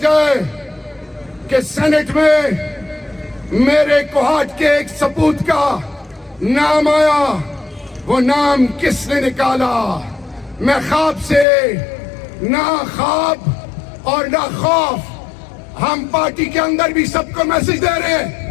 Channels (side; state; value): right; drops out; at 11.5 s